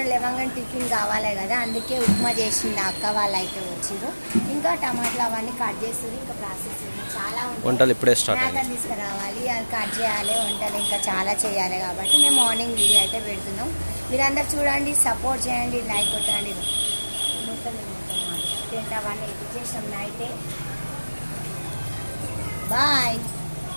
లేవగానే టిఫిన్ కావాలి కదా, అందుకే ఉప్మా చేసింది అక్క వాళ్ళు అయితే వచ్చారు. ఇంకా టమాటాలు అవన్నీ కట్ చేస్తుంది. ఇంకా ప్రాసెస్ చాలా వంటలు ఇప్పుడే స్టార్ట్ మేకని తీసుకురావాలి, అది కట్ చేయాలి, వంటలు ఇంకా చాలా చేయాలి. కాబట్టి మేము మార్నింగ్ వీడియో అయితే పెడుతున్నాం. మీరందరూ చూడండి, సపోర్ట్ చేయండి, లైక్ కొట్టండి. మొత్తం టెంట్ అవన్నీ ఎడిట్ చేసాం నైటే. బాయ్.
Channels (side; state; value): both; inverted; correlation -1.00